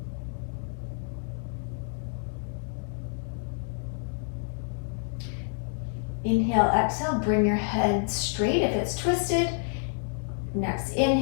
Inhale, exhale, bring your head straight if it's twisted. Next,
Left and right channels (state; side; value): silent; right; 59 dB below the other